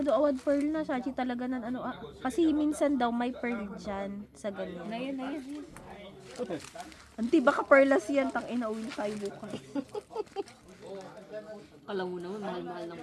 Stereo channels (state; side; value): identical; both; correlation 1.00